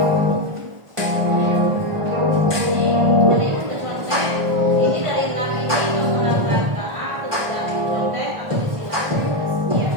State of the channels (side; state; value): left; late; 1.4 ms